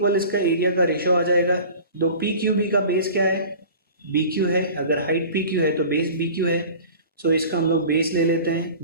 इसका एरिया का रेशियो आ जाएगा. तो पी क्यू बी का बेस क्या है? बी क्यू है. अगर हाइट पी क्यू है तो बेस बी क्यू है. सो इसका हम लोग बेस ले लेते हैं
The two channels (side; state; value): both; inverted; correlation -0.41